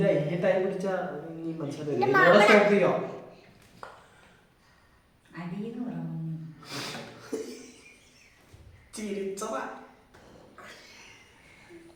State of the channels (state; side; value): identical; both; correlation 1.00